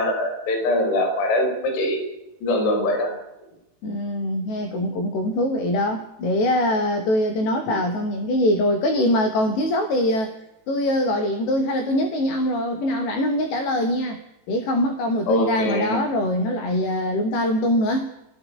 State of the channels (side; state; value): right; late; 18 ms